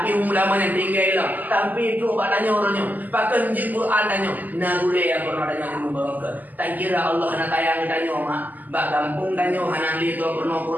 humu ulama yang tinggal lah. Tapi tu pak tanya orangnya. Pakai njib Quran tanya. Nagule yang pernah tanya ilmu barokah. Tak kira Allah nak tayang tanya mak. Bak kampung tanya hana li tu pernah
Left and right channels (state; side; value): late; left; 0.083 ms